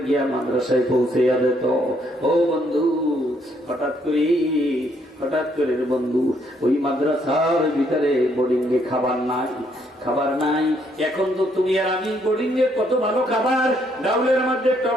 গিয়া মাদ্রাসায় পৌঁছে যেত। ও বন্ধু হঠাৎ করে বন্ধু ওই মাদ্রাসার ভিতরে বোর্ডিং এ খাবার নাই। এখন তো তুমি আর আমি বোর্ডিং এ কত ভালো খাবার, ডাউলের মধ্যে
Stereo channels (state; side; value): normal; both; correlation 0.71